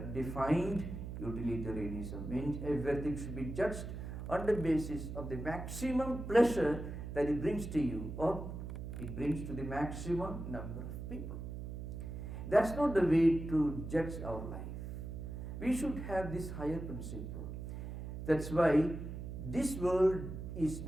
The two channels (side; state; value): right; noise; hum, 7 dB below the sound